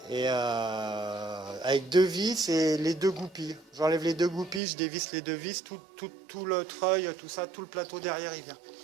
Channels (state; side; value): drops out; left; at 4.6 s